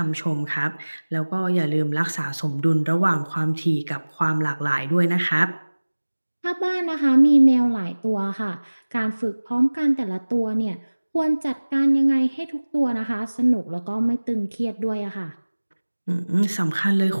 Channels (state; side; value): inverted; both; correlation -1.00